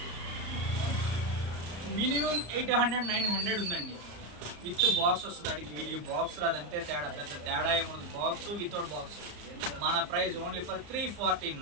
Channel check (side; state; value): left; late; 34 ms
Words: మినిమం 800, 900 ఉందండి. విత్ బాక్స్ వస్తుంది. అడిగి వీటికి బాక్స్ రాదంతే తేడా, పెద్ద తేడా ఏముంది. Box without box. మన ప్రైస్ ఓన్లీ ఫర్